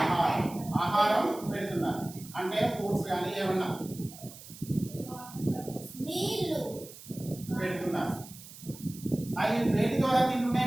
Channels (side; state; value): right; noise; hiss, 17 dB below the sound